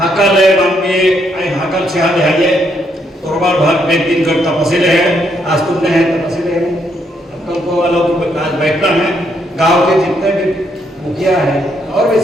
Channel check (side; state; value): both; normal; correlation 0.74